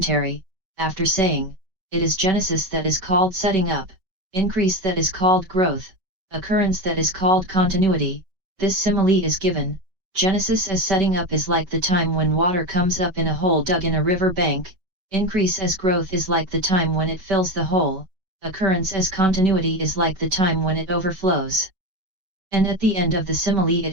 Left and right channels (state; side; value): late; left; 5.2 ms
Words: after saying, it is genesis that is called setting up, increase that is called growth, occurrence that is called continuity, this simile is given. Genesis as setting up is like the time when water comes up in a hole dug in a river bank, increase as growth is like the time when it fills the hole, occurrence as continuity is like the time when it overflows. And at the end of the simile